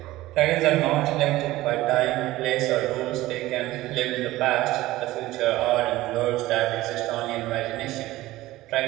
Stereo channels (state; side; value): quieter; left; 17.1 dB